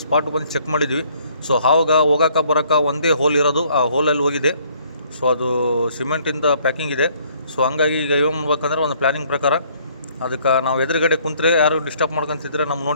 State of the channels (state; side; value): inverted; both; correlation -0.62